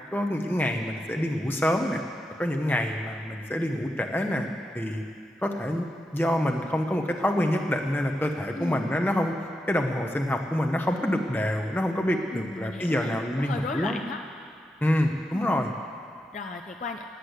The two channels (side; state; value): both; normal; correlation 0.87